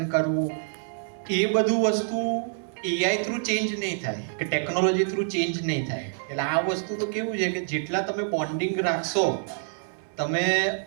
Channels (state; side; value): silent; left; digital silence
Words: કરવું, એ બધું વસ્તુ એઆઈ થ્રુ ચેન્જ નહીં થાય કે ટેકનોલોજી થ્રુ ચેન્જ નહીં થાય. એટલે આ વસ્તુ તો કેવું છે કે જેટલા તમે બોન્ડિંગ રાખશો, તમે